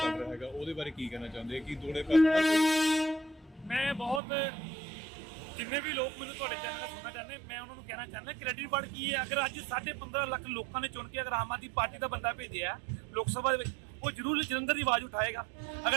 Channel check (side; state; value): left; drops out; at 4.2 s